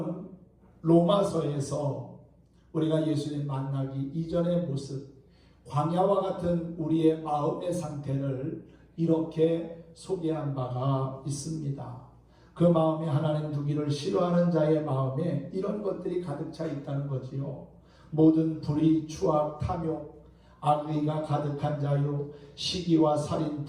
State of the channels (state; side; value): identical; both; correlation 1.00